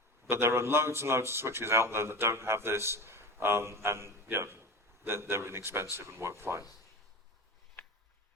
But there are loads and loads of switches out there that don't have this, and you know, they're inexpensive and work fine.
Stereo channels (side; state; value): both; normal; correlation 0.30